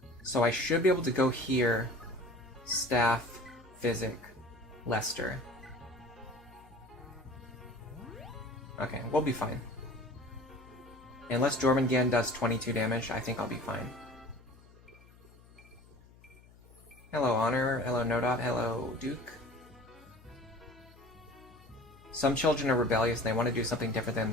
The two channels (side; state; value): left; noise; hum, 24 dB below the sound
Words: So I should be able to go here, staff, physic, Lester. Okay, we'll be fine. Unless Jormungand does 22 damage, I think I'll be fine. Hello, Honor. Hello, Nodot. Hello, Duke. Some children are rebellious and they want to do something different than